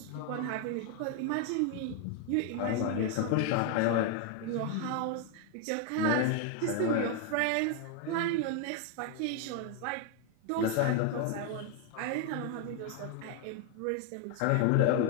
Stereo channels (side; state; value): both; different; correlation 0.01